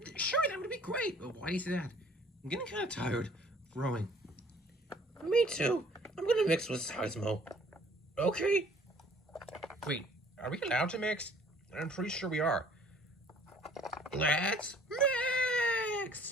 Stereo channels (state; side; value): normal; both; correlation 0.56